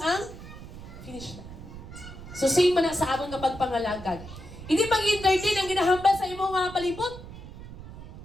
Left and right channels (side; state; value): right; noise; rumble, 14 dB below the sound